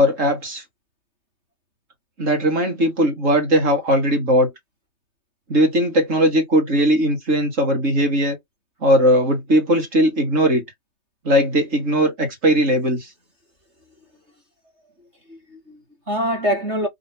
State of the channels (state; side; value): late; left; 3.8 ms